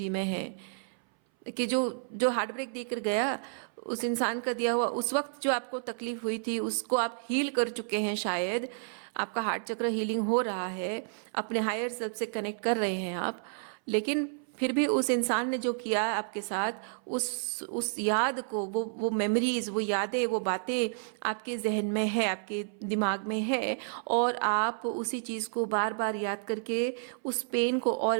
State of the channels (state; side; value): silent; left; 57 dB below the other